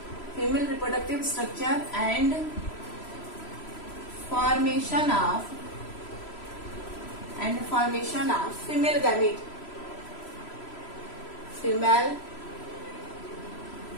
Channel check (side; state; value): right; late; 3.0 ms